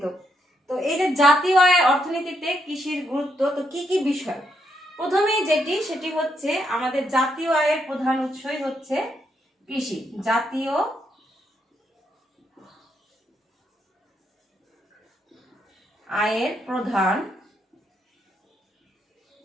তো এই যে জাতীয় আয় অর্থনীতিতে কৃষির গুরুত্ব, তো কি কি বিষয়? প্রথমেই সেটি হচ্ছে আমাদের জাতীয় আয়ের প্রধান উৎসই হচ্ছে কৃষি। জাতীয় আয়ের প্রধান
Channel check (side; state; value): both; normal; correlation 0.78